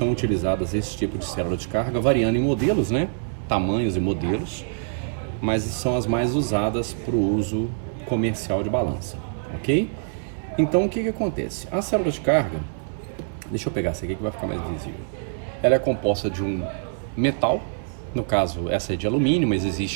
utilizadas esse tipo de célula de carga, variando em modelos, né, tamanhos e modelos, mas são as mais usadas para o uso comercial de balança, ok? Então o que acontece? A célula de carga, deixa eu pegar essa aqui que vai ficar mais visível. Ela é composta de um metal, no caso essa é de alumínio, mas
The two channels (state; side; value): silent; left; digital silence